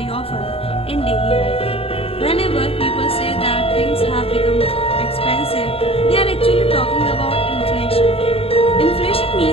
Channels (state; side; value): late; right; 0.27 ms